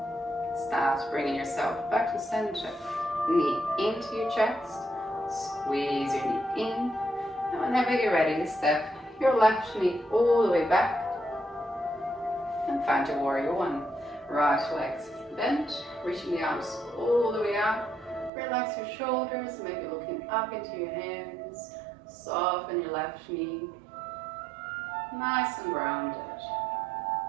Start bringing yourself back to center. Knee into your chest. Squeeze your knee in. And whenever you're ready, step your left knee all the way back. And find your warrior one. Right legs bent, reaching the arms all the way up. Relax your shoulders, maybe looking up into your hands. Soften your left knee. Nice and grounded.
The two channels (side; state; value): left; drops out; at 18.3 s